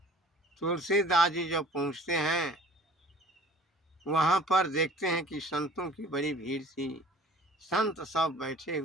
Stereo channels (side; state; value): both; normal; correlation 0.48